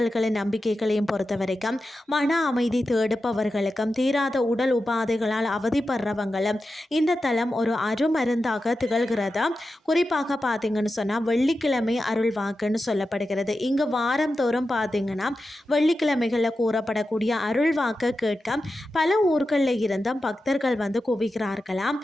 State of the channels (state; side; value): normal; both; correlation 0.91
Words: நம்பிக்கைகளையும் பொறுத்த வரைக்கும் மன அமைதி தேடுப்பவர்களுக்கும் தீராத உடல் உபாதைகளால் அவதிப்படுறவங்களும் இந்த தலம் ஒரு அருமருந்து திகழ்கிறது. குறிப்பாக பார்த்தீங்கன்னு சொன்னால் வெள்ளிக்கிழமை அருள் வாக்குன்னு சொல்லப்படுகிறது. இங்கு வாரம் தோறும் பார்த்தீங்கன்னா வெள்ளிக்கிழமைகளில் கூறப்படக்கூடிய அருள் வாக்கு கேட்க பல ஊர்களில் இருந்தும் பக்தர்கள் குவிக்கிறார்களாம்.